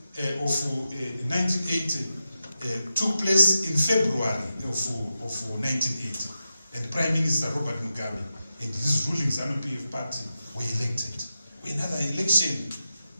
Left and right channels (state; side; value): inverted; both; correlation -0.89